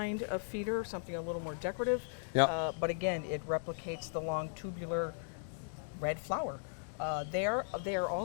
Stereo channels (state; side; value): silent; right; digital silence